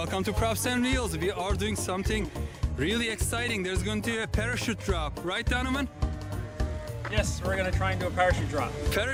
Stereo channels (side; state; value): both; identical; correlation 1.00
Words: to Props and Reels. We are doing something really exciting. There's going to be a parachute drop, right Donovan? Yes, we're going to try and do a parachute drop.